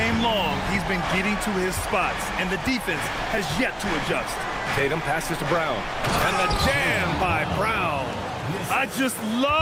long, he's been getting to his spots, and the defense has yet to adjust. Tatum passes to Brown. And the jam by Brown. I just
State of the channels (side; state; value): both; identical; correlation 1.00